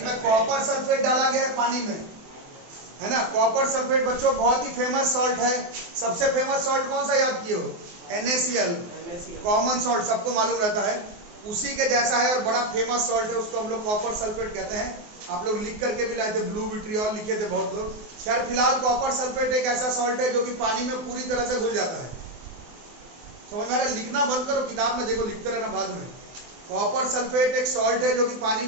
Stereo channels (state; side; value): late; left; 24 ms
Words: में कॉपर सल्फेट डाला गया है पानी में, है ना। कॉपर सल्फेट बच्चों बहुत ही फेमस सॉल्ट है। सबसे फेमस सॉल्ट कौन सा याद किए हो? NaCl, कॉमन सॉल्ट, सबको मालूम रहता है। उसी के जैसा है और बड़ा फेमस सॉल्ट है, उसको हम लोग कॉपर सल्फेट कहते हैं। आप लोग लिख करके भी लाए थे, ब्लू विट्रियोल लिखे थे बहुत लोग। खैर फिलहाल कॉपर सल्फेट एक ऐसा सॉल्ट है जो कि पानी में पूरी तरह से घुल जाता है। समझ में आ रहा है? लिखना बंद करो, किताब में देखो, लिखते रहना बाद में। कॉपर सल्फेट एक सॉल्ट है जो कि पानी